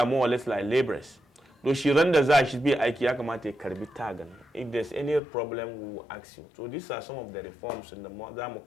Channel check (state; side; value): drops out; right; at 5.2 s